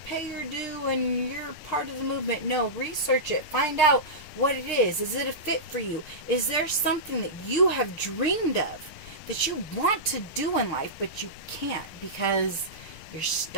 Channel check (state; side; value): late; right; 6.6 ms